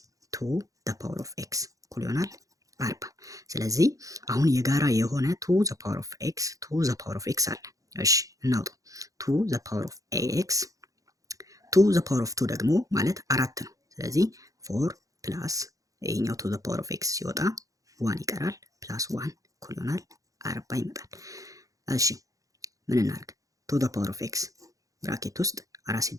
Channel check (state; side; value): late; left; 0.16 ms